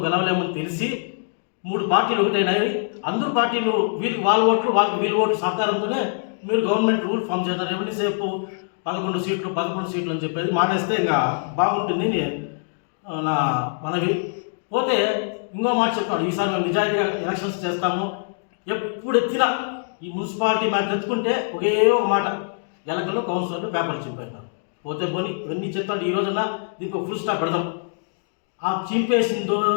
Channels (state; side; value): silent; right; digital silence